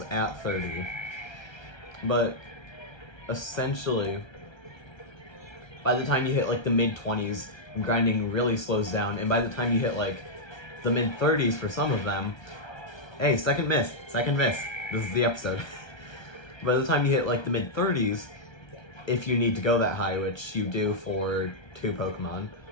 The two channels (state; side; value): late; right; 1.3 ms